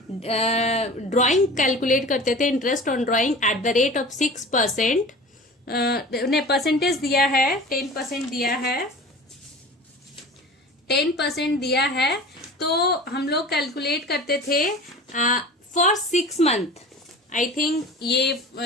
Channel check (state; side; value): normal; both; correlation 0.38